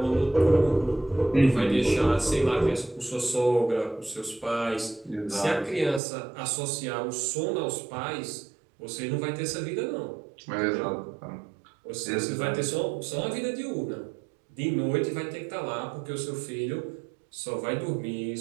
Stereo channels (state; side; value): drops out; left; at 6.0 s